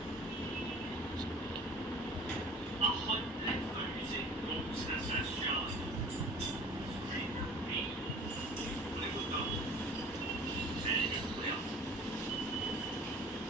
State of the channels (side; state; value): both; normal; correlation 0.45